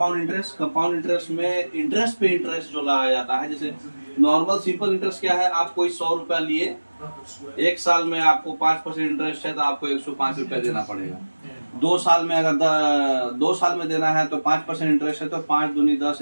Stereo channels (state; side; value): inverted; both; correlation -1.00